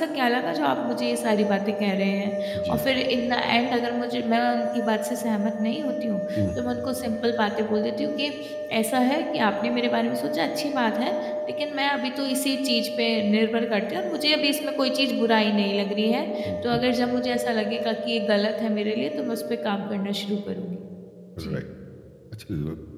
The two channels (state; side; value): identical; both; correlation 1.00